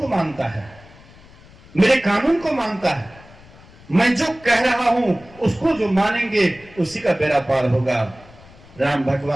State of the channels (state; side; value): noise; left; rumble, 23 dB below the sound